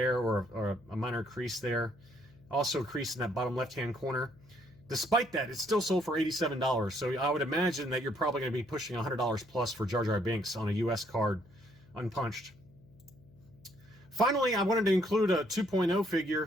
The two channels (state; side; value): noise; left; hum, 26 dB below the sound